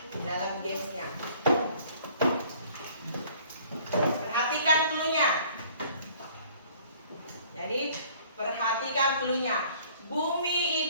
dalam gamesnya. Perhatikan cluenya. Jadi perhatikan cluenya.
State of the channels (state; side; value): inverted; both; correlation -0.55